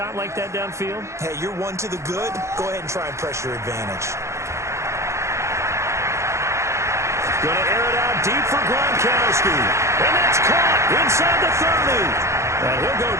like that downfield? Hey, you're one to the good. Go ahead and try and press your advantage. Going to air it out deep for Gronkowski. And that's caught inside the 30. And he'll go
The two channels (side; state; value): left; late; 0.14 ms